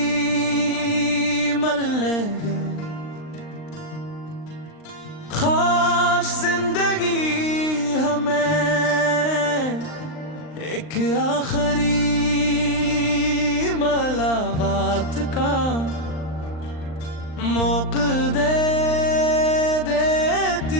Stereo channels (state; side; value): late; right; 39 ms